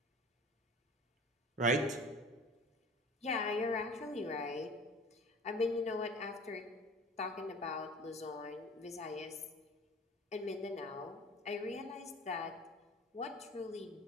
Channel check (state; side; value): normal; both; correlation 0.42